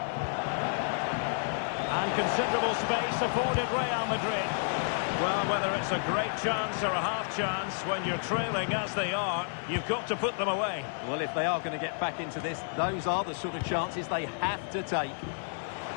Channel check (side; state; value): right; silent; 57 dB below the other